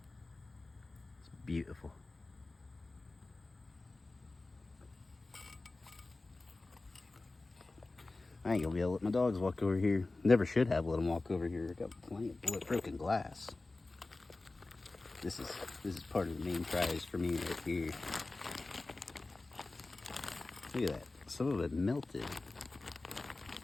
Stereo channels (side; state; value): right; quieter; 3.2 dB